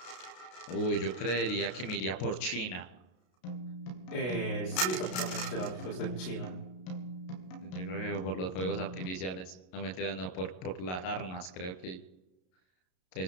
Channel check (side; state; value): right; late; 32 ms